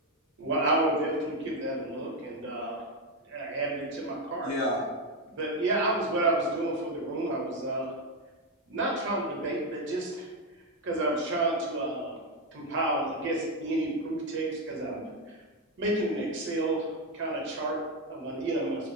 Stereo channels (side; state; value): both; normal; correlation 0.07